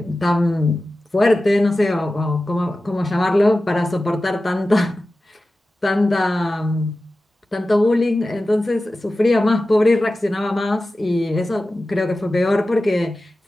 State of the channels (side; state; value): both; normal; correlation 0.95